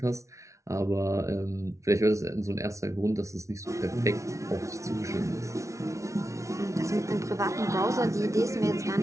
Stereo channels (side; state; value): left; late; 0.14 ms